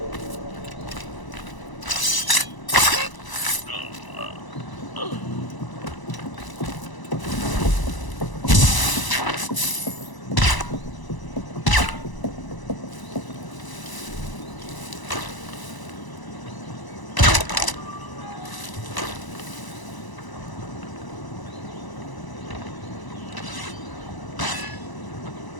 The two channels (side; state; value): right; late; 1.0 ms